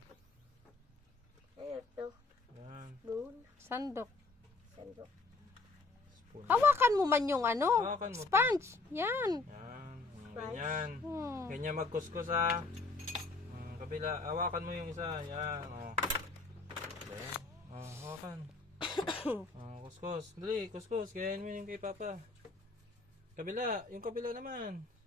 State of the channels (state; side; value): quieter; right; 3.7 dB